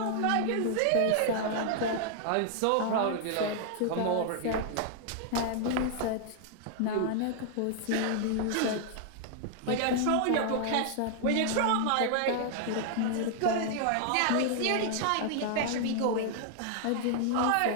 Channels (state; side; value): different; both; correlation -0.01